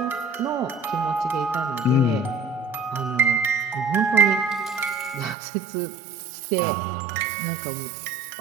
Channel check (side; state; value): left; drops out; at 5.4 s